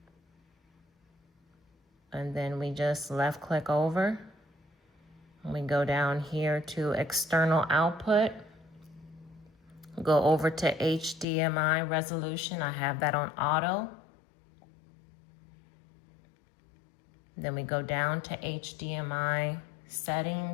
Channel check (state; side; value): drops out; right; at 11.2 s